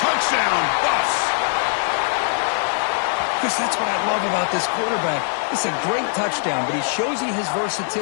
Touchdown, Buffs. Chris, that's what I love about this quarterback. It's a great touchdown, but he shows you his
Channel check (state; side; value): silent; right; digital silence